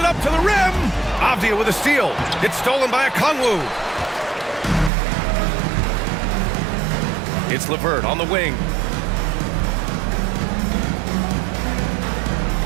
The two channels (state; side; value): drops out; left; at 4.9 s